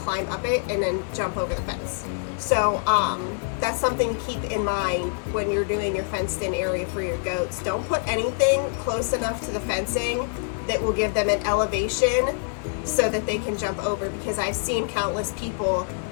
up it and then jump over the fence. So that's something to keep in mind when you're doing your fenced in area for your goats. Don't put anything close enough to the fencing that will give them an elevation so that they can jump over, because I've seen countless people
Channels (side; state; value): right; silent; 62 dB below the other